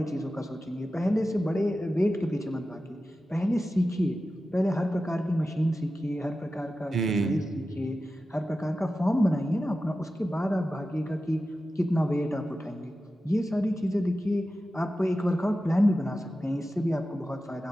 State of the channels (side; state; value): both; normal; correlation 0.93